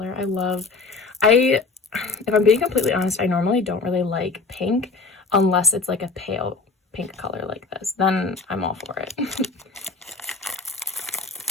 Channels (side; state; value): right; quieter; 4.0 dB